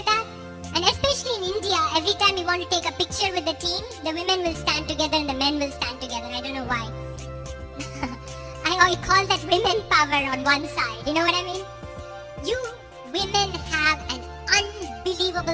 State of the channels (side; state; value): both; identical; correlation 1.00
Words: that? And especially in India, every time you want to take a picture with the team, the women will stand together and the men will stand together. I don't know why. I call that women power on one side. You know what I mean? You women have an